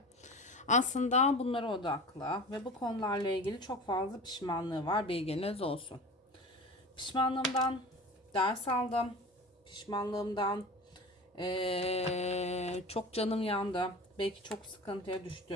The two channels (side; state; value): both; normal; correlation 0.35